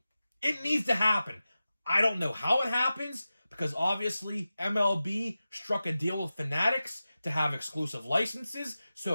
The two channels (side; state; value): both; inverted; correlation -0.94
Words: It needs to happen. I don't know how it happens, because obviously MLB struck a deal with Fanatics to have exclusive licenses.